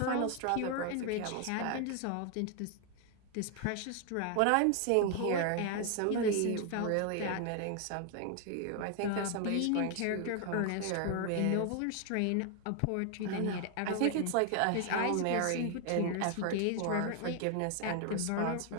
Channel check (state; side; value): different; both; correlation 0.00